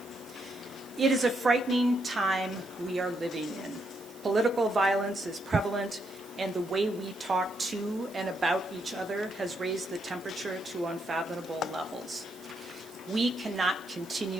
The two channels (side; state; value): right; noise; hiss, 22 dB below the sound